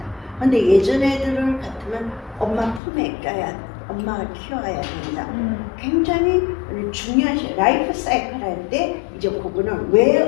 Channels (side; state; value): right; drops out; at 2.8 s